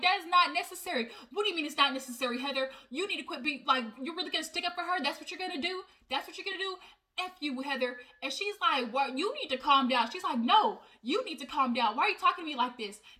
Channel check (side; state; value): both; identical; correlation 1.00